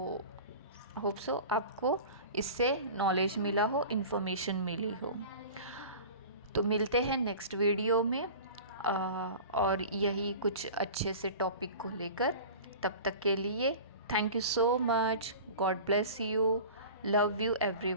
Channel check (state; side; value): inverted; both; correlation -0.37